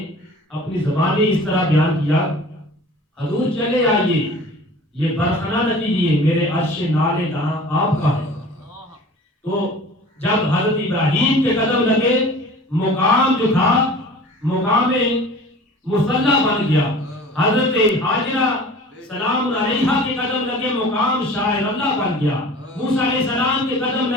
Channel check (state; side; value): normal; both; correlation 0.43